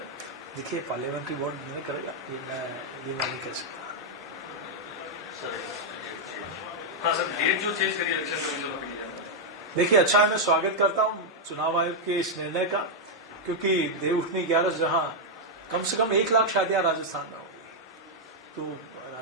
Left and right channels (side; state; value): both; normal; correlation -0.02